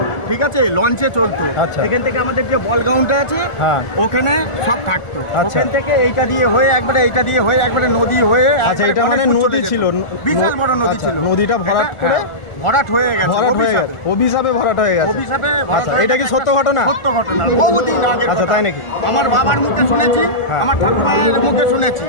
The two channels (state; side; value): late; right; 1.4 ms